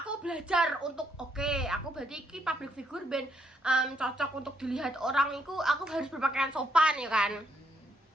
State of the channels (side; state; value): both; normal; correlation 0.75